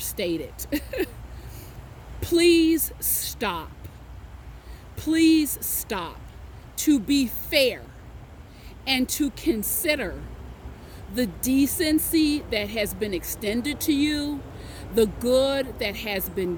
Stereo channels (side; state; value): both; identical; correlation 1.00